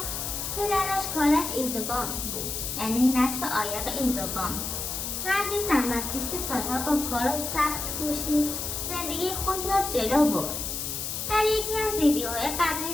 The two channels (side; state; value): left; noise; hiss, 4 dB below the sound